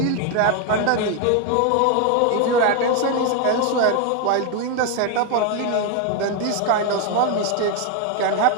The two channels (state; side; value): different; both; correlation 0.01